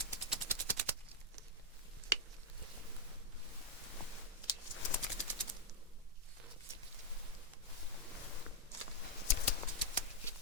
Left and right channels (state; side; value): normal; both; correlation -0.04